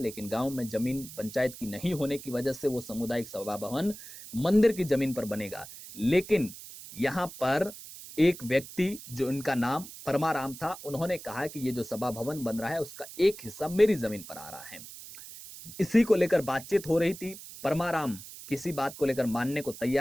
गांव में जमीन पंचायत की नहीं होने की वजह से वो सामुदायिक सभा भवन मंदिर की जमीन पर बनेगा। लेकिन यहां पर एक व्यक्ति जो इनका नाम परमाराम था, उन्होंने कहा कि ये जो सभा भवन बन रहा है उसका एक हिस्सा मेरी जमीन पर आ रहा है। इसी को लेकर बातचीत हो रही थी। परमाराम किसी बात को लेकर मानने को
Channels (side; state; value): right; noise; hiss, 14 dB below the sound